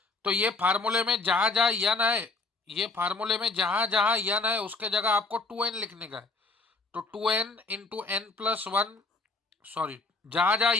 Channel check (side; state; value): right; quieter; 3.7 dB